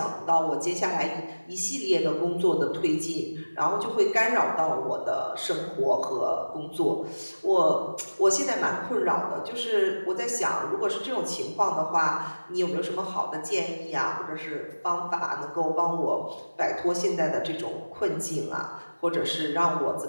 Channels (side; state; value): both; inverted; correlation -1.00